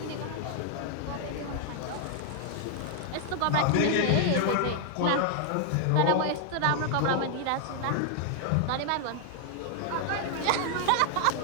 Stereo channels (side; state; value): both; different; correlation 0.00